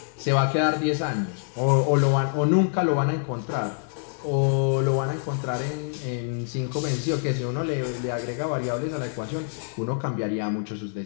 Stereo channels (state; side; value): silent; right; digital silence